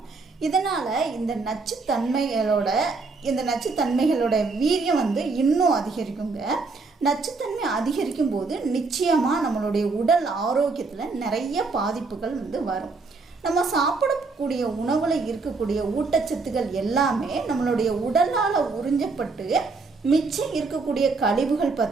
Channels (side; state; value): left; quieter; 4.1 dB